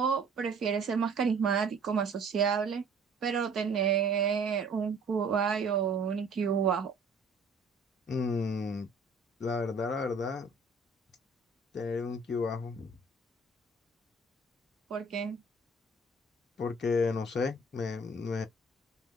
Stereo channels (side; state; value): left; quieter; 3.2 dB